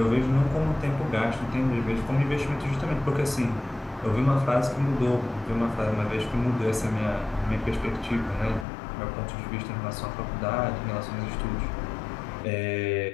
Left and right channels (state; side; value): drops out; right; at 8.7 s